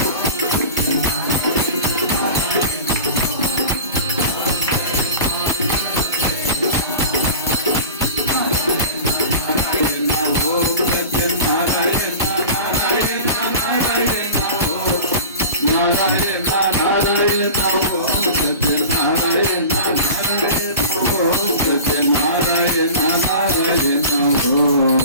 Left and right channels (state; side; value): inverted; both; correlation -0.35